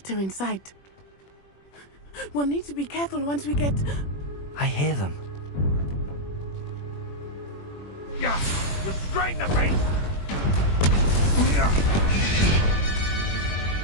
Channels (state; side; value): late; right; 21 ms